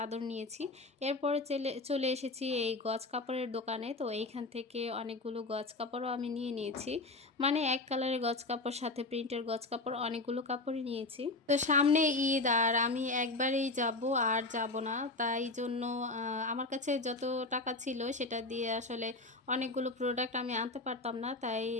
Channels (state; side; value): quieter; right; 3.2 dB